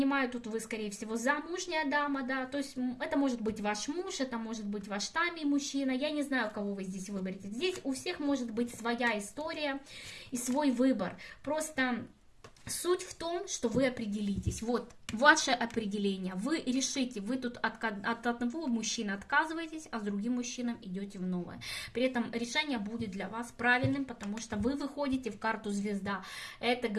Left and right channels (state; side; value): identical; both; correlation 1.00